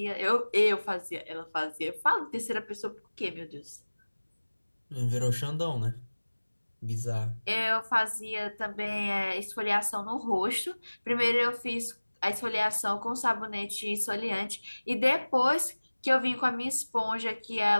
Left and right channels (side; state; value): both; inverted; correlation -1.00